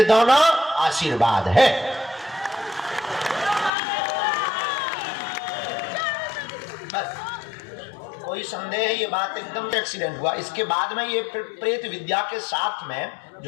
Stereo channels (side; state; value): right; drops out; at 3.7 s